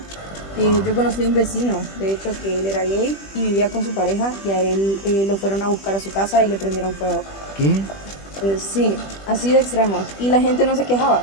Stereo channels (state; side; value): late; right; 20 ms